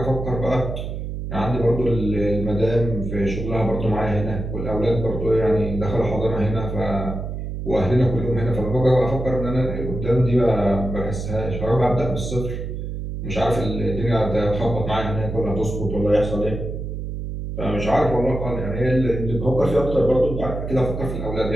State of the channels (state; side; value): noise; right; hum, 5 dB below the sound